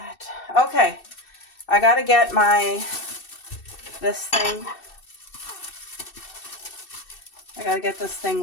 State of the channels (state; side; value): late; right; 2.6 ms